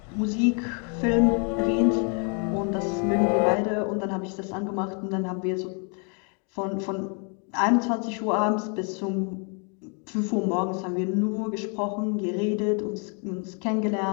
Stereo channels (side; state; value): right; quieter; 38.0 dB